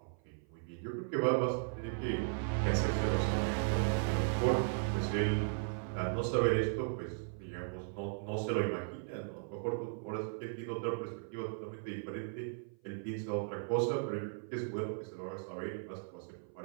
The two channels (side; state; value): left; silent; 53 dB below the other